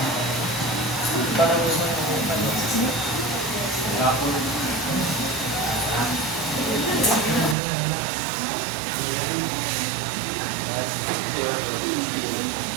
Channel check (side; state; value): left; drops out; at 7.6 s